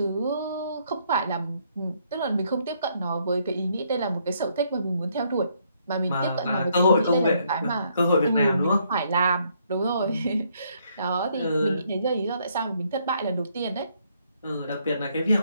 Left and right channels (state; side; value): inverted; both; correlation -0.70